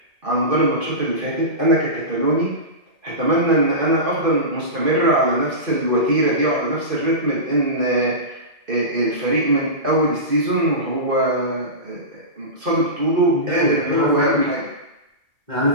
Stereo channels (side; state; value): left; late; 2.5 ms